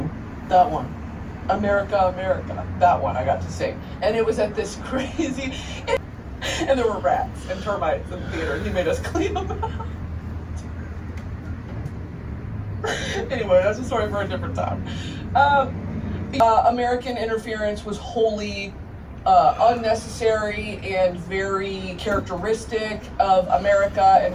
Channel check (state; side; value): identical; both; correlation 1.00